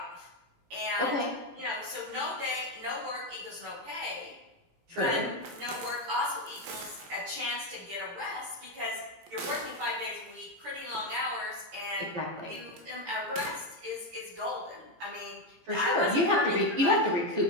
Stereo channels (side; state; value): left; late; 17 ms